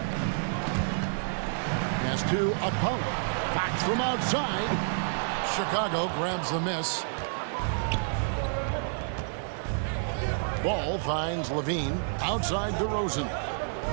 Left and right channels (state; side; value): silent; left; digital silence